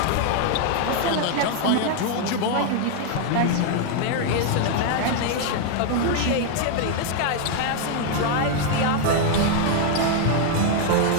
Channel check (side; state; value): both; different; correlation 0.00